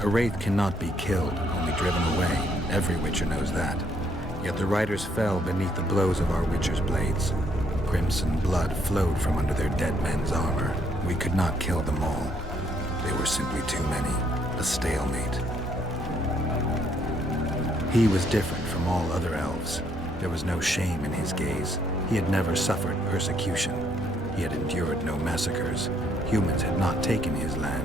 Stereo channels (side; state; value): both; normal; correlation 0.70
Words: A wraith cannot be killed, only driven away. Every witcher knows that. Yet the riders fell beneath the blows of our witcher's blades. Crimson blood flowed from under their dead men's armor. We could not kill them all. They were simply too many. A stalemate. He was different from all other elves. There was no shame in his gaze. He had never suffered persecution. He had endured no massacres. Humans had not taken his